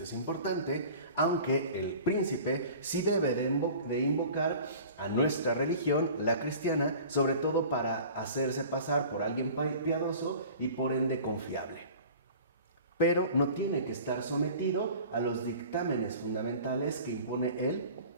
es importante, aunque el príncipe sí debe de invocar a nuestra religión, la cristiana, sobre todo para hacerse pasar por alguien piadoso y por ende confiable. Pero no tiene que estar sometido a los dictámenes fundamentales que impone el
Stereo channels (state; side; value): inverted; both; correlation -0.42